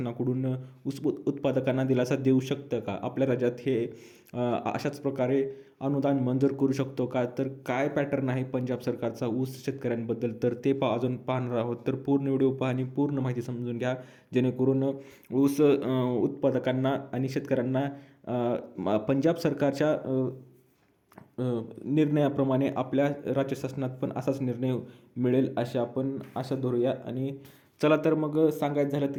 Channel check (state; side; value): identical; both; correlation 1.00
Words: ऊस उत्पादकांना दिलासा देऊ शकतं का? आपल्या राज्यात हे अशाच प्रकारे अनुदान मंजूर करू शकतो का? काय पॅटर्न आहे पंजाब सरकारचा ऊस शेतकऱ्यांबद्दल, तर ते अजून पाहणार आहोत. पूर्ण व्हिडिओ पहा आणि पूर्ण माहिती समजून घ्या, जेणेकरून ऊस उत्पादकांना आणि शेतकऱ्यांना पंजाब सरकारच्या निर्णयाप्रमाणे आपल्या राज्य शासनात पण असाच निर्णय मिळेल अशी आपण आशा धरूया. आणि चला तर मग सांगायचं झालं